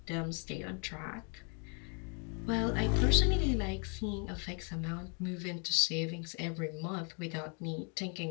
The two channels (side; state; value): right; quieter; 38.2 dB